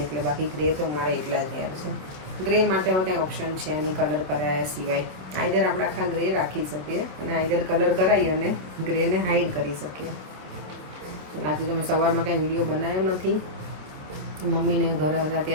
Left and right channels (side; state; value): left; late; 27 ms